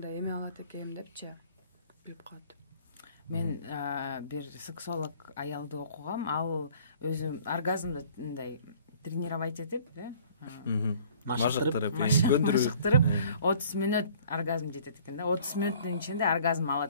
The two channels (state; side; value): inverted; both; correlation -0.53